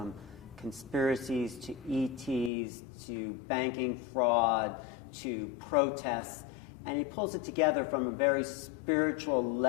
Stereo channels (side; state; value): right; drops out; at 2.5 s